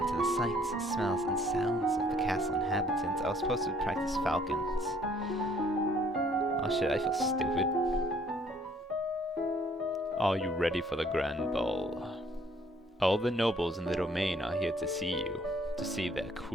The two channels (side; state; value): both; normal; correlation 0.61